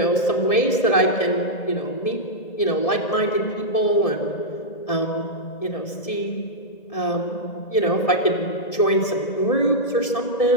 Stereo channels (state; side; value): late; right; 1.7 ms